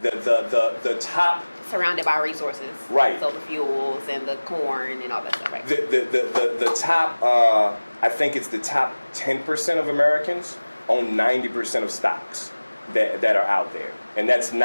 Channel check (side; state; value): both; inverted; correlation -1.00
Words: The top... Surrounded by resources. Right. So the fuels and the corn and all that stuff, right? The top, I think it's the top 10% of Americans own 90% of stocks that are out there. And that's